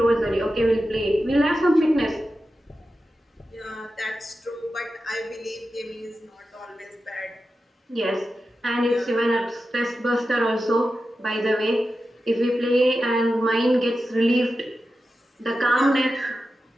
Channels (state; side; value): normal; both; correlation 0.92